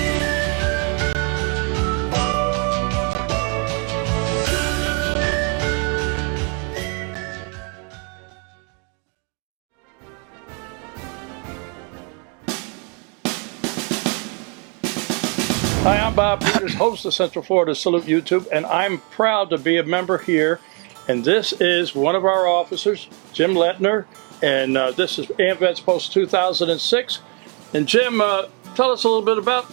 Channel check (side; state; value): left; quieter; 36.3 dB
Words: Hi, I'm Bob Peters, host of Central Florida Salute YouTube, and I'm proud to be a member here. And this is one of our officers, Jim Lettner, and this is AMVETS Post 2006. And Jim, tell us a little bit about